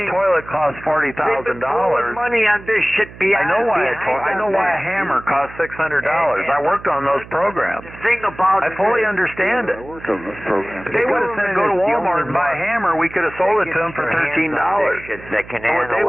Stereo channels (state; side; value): noise; right; hum, 18 dB below the sound